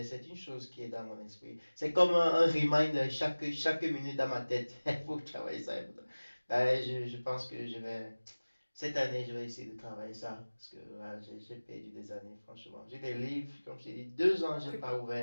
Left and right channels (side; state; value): both; inverted; correlation -1.00